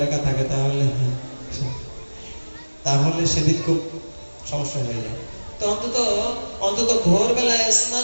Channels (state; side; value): inverted; both; correlation -1.00